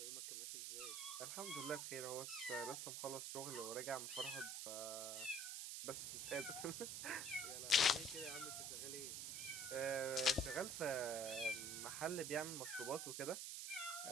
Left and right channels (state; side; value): noise; right; hiss, 3 dB below the sound